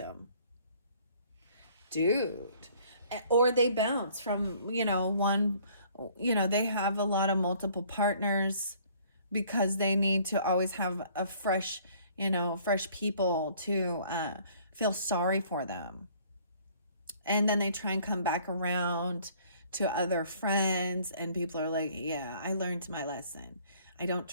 dude. Or they bounce from, you know, one, you know, they have a lot of multiple partners because they need to always have a fresh, you know, fresh people to feel sorry for them. And then they try and come back around to other friends, and people are like, yeah, I learned my lesson. I don't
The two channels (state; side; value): inverted; both; correlation -0.57